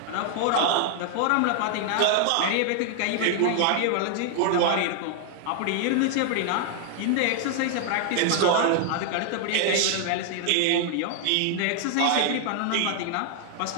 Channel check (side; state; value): both; different; correlation 0.00